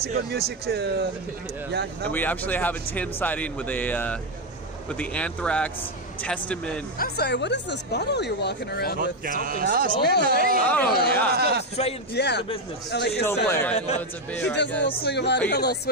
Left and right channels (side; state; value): both; normal; correlation 0.07